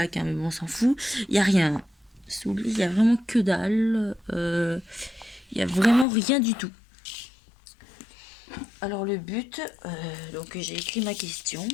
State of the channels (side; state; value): right; drops out; at 6.1 s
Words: hein, mais bon on s'en fout. Il n'y a rien. Sous le lit, il n'y a vraiment que dalle. Il n'y a vraiment rien du tout. Alors le but, donc j'ai écrit ma question.